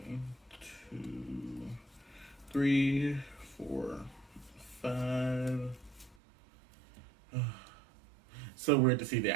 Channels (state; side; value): drops out; left; at 6.2 s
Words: 2, 3, 4, 5. So weird to see the